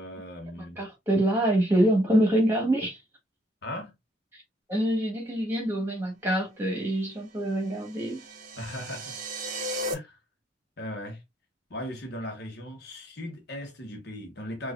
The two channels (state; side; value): normal; both; correlation 0.70